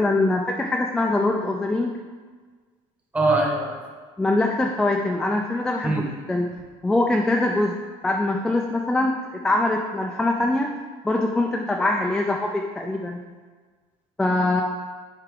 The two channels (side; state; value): both; normal; correlation 0.78